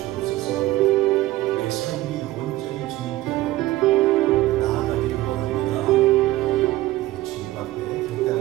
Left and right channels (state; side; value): quieter; left; 16.9 dB